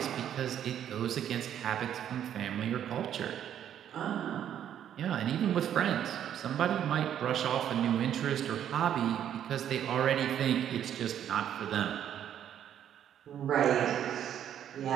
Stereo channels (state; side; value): quieter; left; 10.0 dB